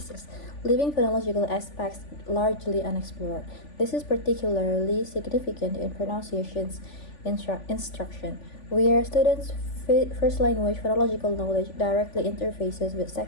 leaving phonological aspects largely unexplored. This is particularly significant in pronunciations instruction, where students' first language phonological knowledge directly interfaces with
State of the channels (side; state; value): right; late; 3.5 ms